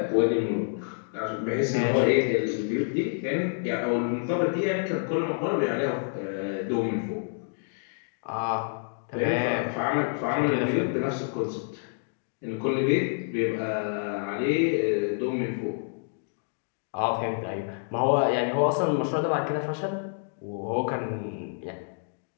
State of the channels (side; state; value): right; silent; digital silence